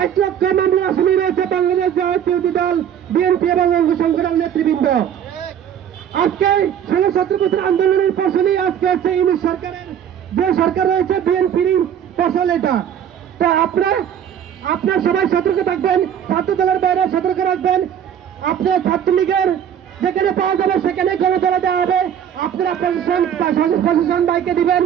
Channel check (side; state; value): left; quieter; 9.2 dB